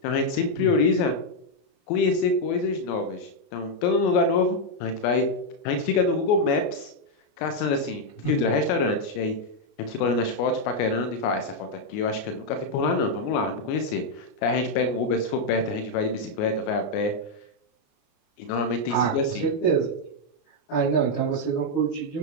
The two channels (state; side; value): late; right; 29 ms